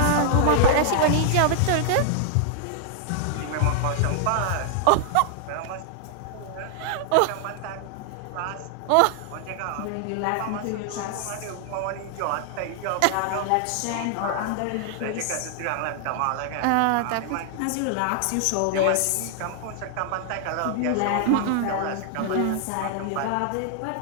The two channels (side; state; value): both; different; correlation -0.01